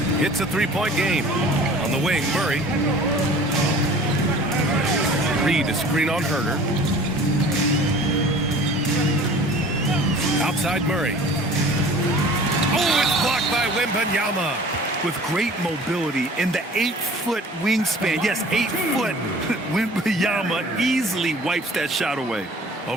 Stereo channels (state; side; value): normal; both; correlation 0.46